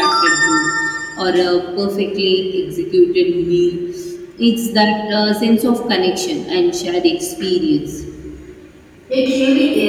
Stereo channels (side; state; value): both; identical; correlation 1.00